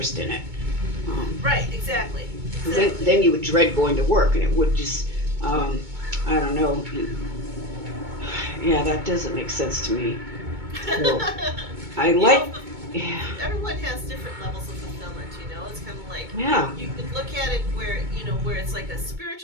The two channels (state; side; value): late; left; 2.2 ms